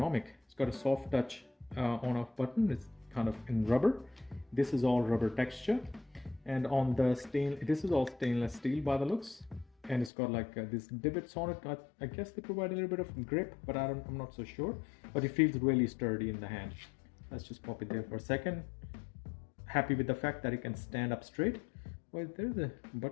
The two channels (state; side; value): drops out; right; at 10.1 s